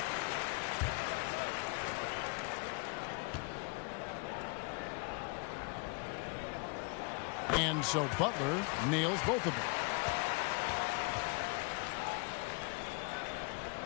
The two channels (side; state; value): right; quieter; 32.6 dB